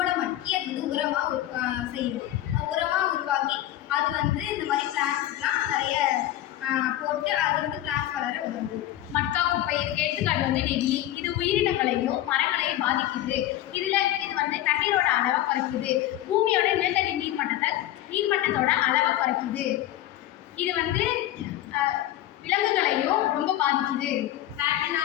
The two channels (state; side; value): quieter; right; 13.7 dB